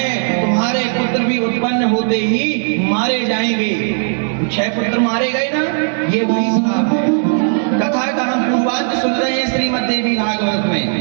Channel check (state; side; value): silent; left; digital silence